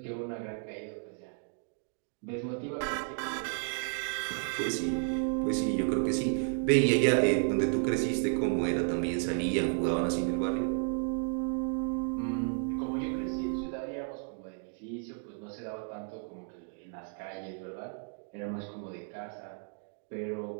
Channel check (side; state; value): left; silent; 56 dB below the other